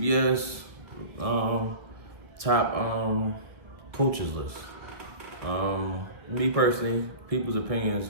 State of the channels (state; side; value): late; left; 1.4 ms